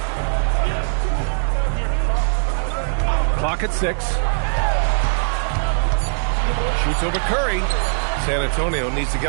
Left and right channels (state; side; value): silent; left; digital silence